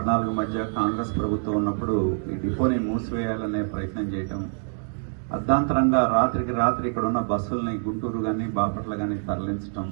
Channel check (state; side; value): silent; left; 58 dB below the other